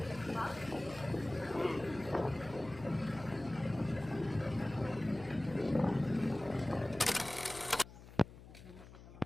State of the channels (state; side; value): noise; left; hum, 17 dB below the sound